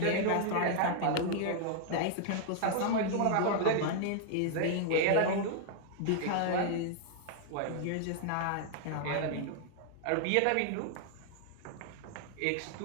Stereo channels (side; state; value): both; different; correlation 0.00